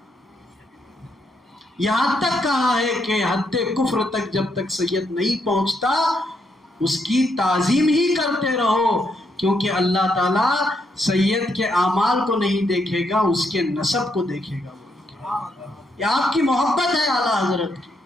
یہاں تک کہا ہے کہ حد کفر تک جب تک سید نہیں پہنچتا اس کی تعظیم ہی کرتے رہو، کیونکہ اللہ تعالیٰ سید کے اعمال کو نہیں دیکھے گا، اس کے نسب کو دیکھے گا۔ یہ آپ کی محبت ہے اعلیٰ حضرت کی،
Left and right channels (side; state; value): both; normal; correlation 0.77